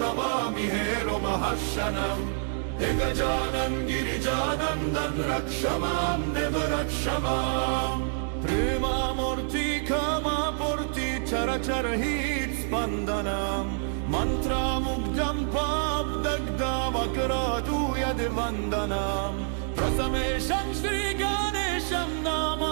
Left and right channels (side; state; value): left; silent; digital silence